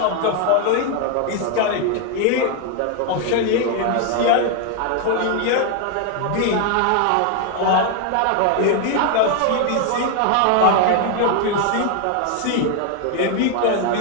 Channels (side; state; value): both; different; correlation 0.01